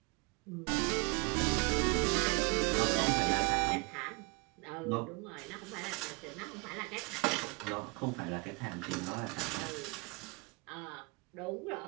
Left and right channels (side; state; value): left; quieter; 29.0 dB